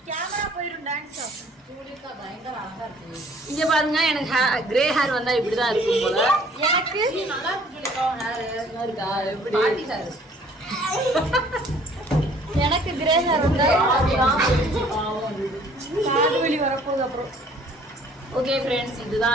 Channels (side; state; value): both; normal; correlation 0.56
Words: கேமரா போயிடும். டான்ஸ் சூரியக்கா பயங்கர அழகா இருக்கு. இங்க பாருங்க எனக்கு கிரே ஹேர் வந்தா இப்படிதான் இருக்கும் போல. எனக்கு நல்லா இருக்கு. ஹேர் இருக்கா எப்படி பாட்டி ஹேர். எனக்கு கிரே ஹேர் வந்தா காது வலி வரப்போகுது. அப்புறம் ஓகே ஃப்ரெண்ட்ஸ்,